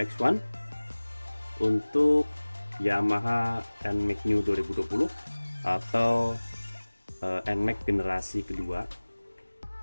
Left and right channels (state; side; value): inverted; both; correlation -1.00